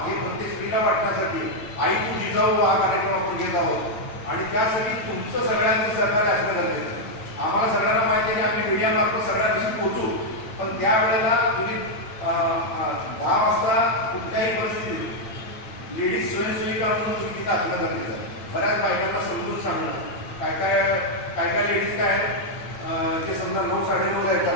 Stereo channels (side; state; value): right; late; 9.1 ms